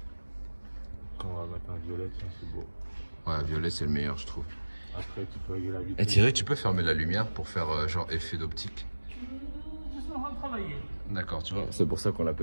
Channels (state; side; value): inverted; both; correlation -1.00